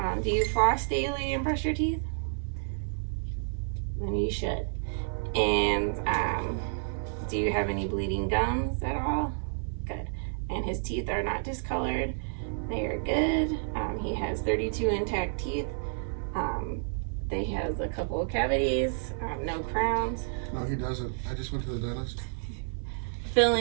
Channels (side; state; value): left; silent; 58 dB below the other